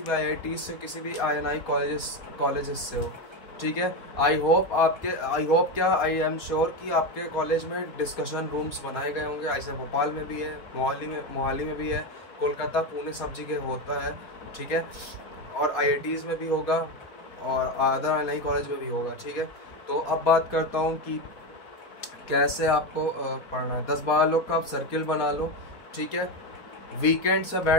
भी IIT से हो, किसी भी INI कॉलेजेस से हो, ठीक है। आई एम श्योर कि आपके कॉलेज में डिस्कशन रूम्स बनाए गए होंगे। ऐसे भोपाल में भी है, मोहाली में भी है, कोलकाता, पुणे, सब जगह होता है, ठीक है, और IITs में भी होगा और अदर INI कॉलेज में भी होगा, ठीक है। तो अब बात करता हूँ कि कैसे आपको पढ़ना है। 10-12 लोग का आप सर्किल बना लो, ठीक है। वीकेंड से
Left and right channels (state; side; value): late; right; 4.2 ms